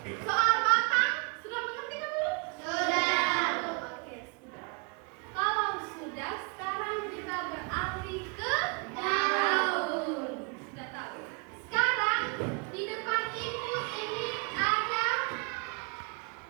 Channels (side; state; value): left; quieter; 33.9 dB